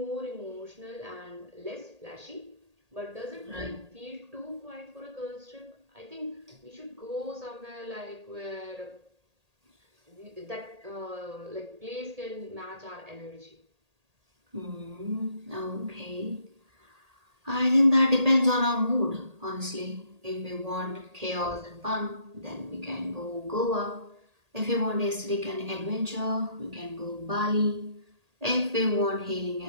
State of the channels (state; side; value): late; left; 1.8 ms